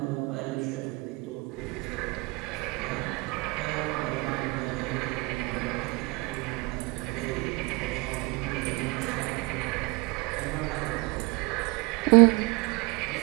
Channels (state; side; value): quieter; left; 26.5 dB